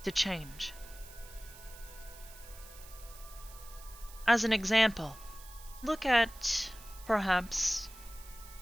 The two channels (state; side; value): noise; right; hiss, 18 dB below the sound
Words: to change. As an example, look at, perhaps,